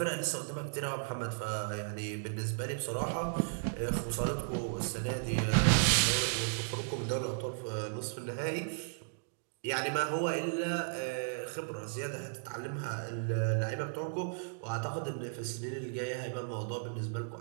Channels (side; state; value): left; silent; digital silence